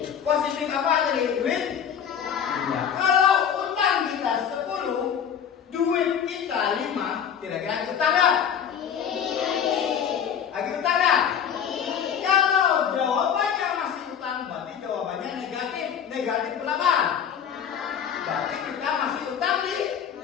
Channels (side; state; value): right; quieter; 8.2 dB